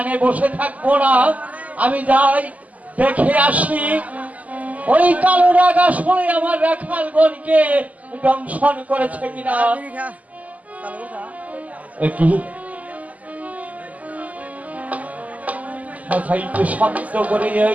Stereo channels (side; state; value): left; late; 0.074 ms